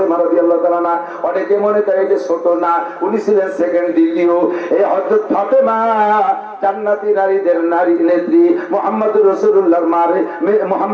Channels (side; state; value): both; identical; correlation 1.00